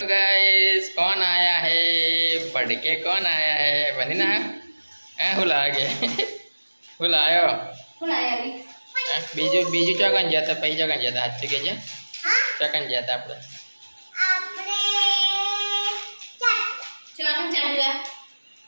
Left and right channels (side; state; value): both; inverted; correlation -1.00